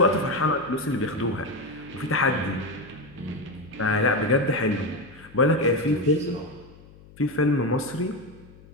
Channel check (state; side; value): noise; left; hum, 22 dB below the sound